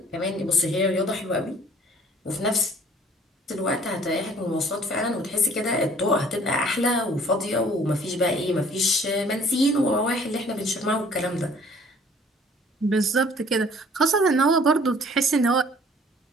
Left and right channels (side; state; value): both; normal; correlation 0.55